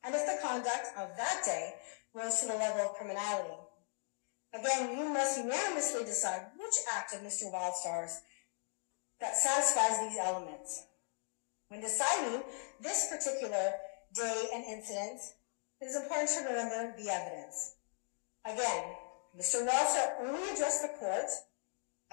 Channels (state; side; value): silent; right; 52 dB below the other